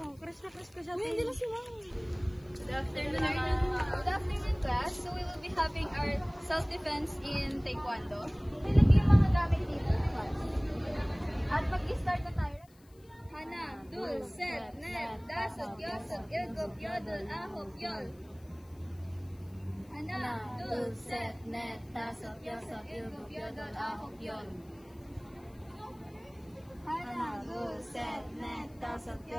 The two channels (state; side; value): noise; left; hiss, 30 dB below the sound